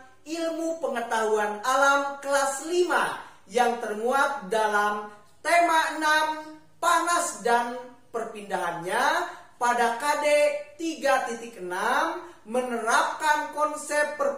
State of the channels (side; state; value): both; identical; correlation 1.00